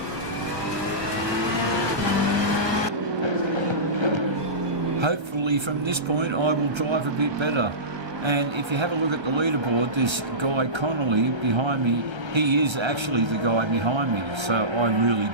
Hopefully from this point I will drive a bit better. And if you have a look at the leaderboard, this guy Connolly behind me, he is actually the guy behind me, so I really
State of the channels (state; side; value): late; left; 1.3 ms